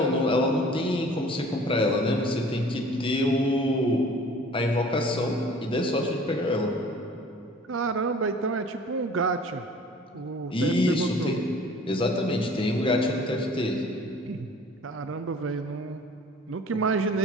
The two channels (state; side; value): normal; both; correlation 0.48